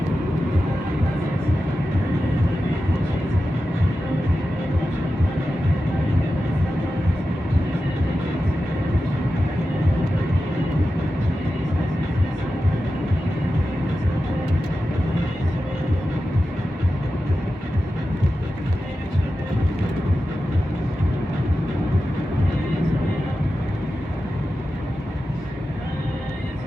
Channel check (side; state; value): both; normal; correlation 0.92